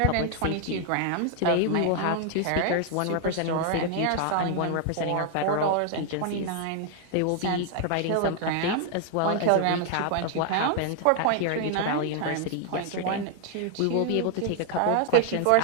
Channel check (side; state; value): both; different; correlation 0.00